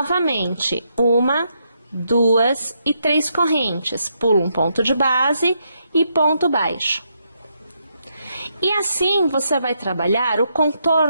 1, 2 e 3 correntes. Pula um ponto de base e ponto baixo. E assim você vai trabalhar o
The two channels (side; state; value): both; inverted; correlation -0.78